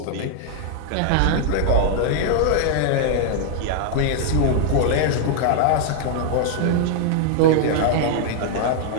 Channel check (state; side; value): different; both; correlation 0.00